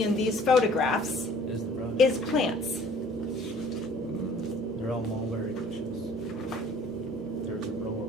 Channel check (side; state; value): both; normal; correlation 0.53